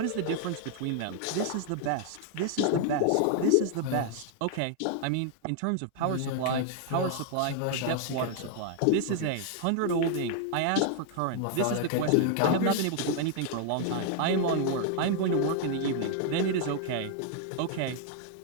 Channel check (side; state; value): both; different; correlation 0.00